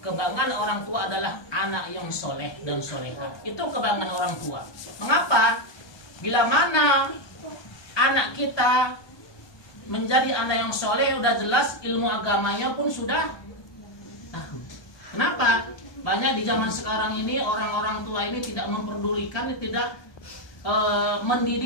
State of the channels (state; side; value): late; right; 1.2 ms